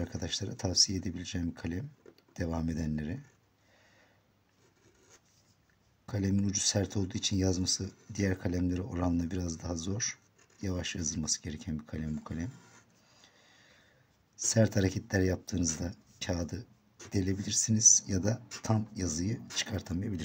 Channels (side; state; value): both; identical; correlation 1.00